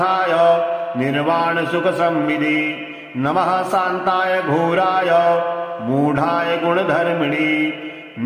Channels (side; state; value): both; identical; correlation 1.00